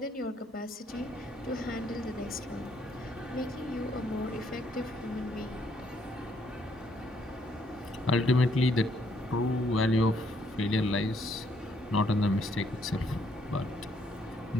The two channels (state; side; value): normal; both; correlation 0.70